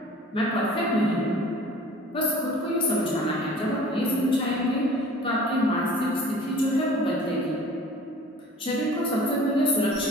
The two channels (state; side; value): normal; both; correlation 0.46